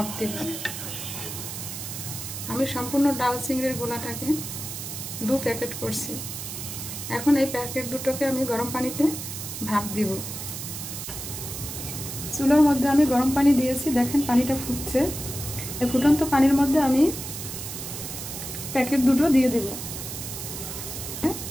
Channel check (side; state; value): right; noise; hiss, 7 dB below the sound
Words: দেব। আমি সম্পূর্ণ ডাল চিংড়ির গোলাটাকে 2 প্যাকেট করছি। এখন এই প্যাকেট দুটোকে আমি গরম পানিতে ভাপ দিব। চুলার মধ্যে আমি গরম পানি দিয়েছি, দেখেন পানিটা ফুটছে। এই ফুটন্ত পানির মধ্যে আমি প্যাকেট দুটো দিয়ে দেব।